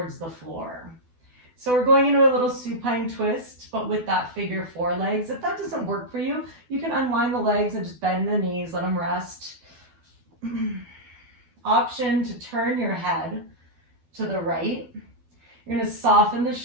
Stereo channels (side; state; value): left; late; 12 ms